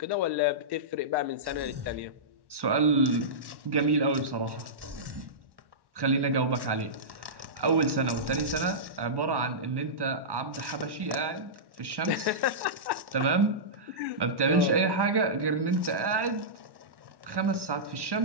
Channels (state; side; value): late; left; 1.1 ms